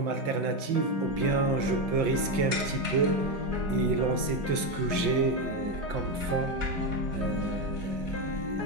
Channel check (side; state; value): left; late; 5.9 ms